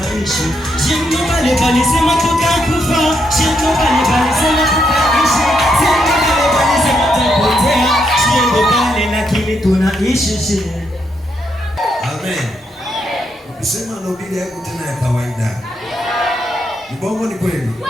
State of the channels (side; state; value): both; normal; correlation 0.78